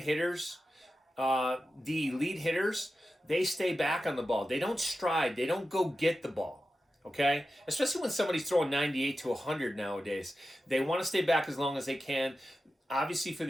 hitters, the elite hitters, they stay back on the ball. They don't stride. They don't go get the ball. Okay? Especially when somebody's throwing 98 to 100 nowadays. They want to stay back as long as they can. obviously for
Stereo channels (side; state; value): both; normal; correlation 0.92